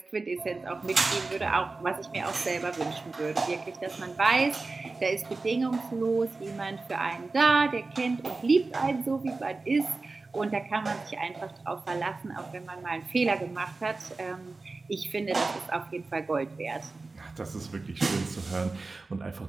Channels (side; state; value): left; quieter; 3.6 dB